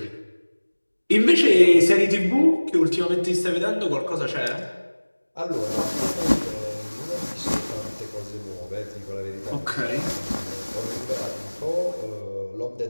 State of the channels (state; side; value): inverted; both; correlation -1.00